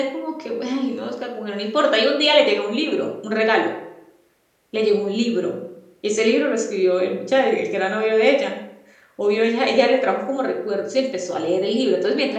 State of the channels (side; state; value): both; identical; correlation 1.00